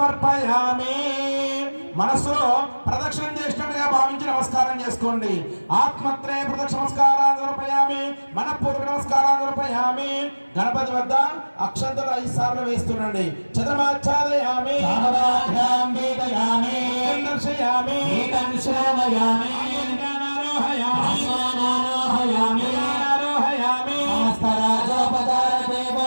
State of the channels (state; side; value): inverted; both; correlation -1.00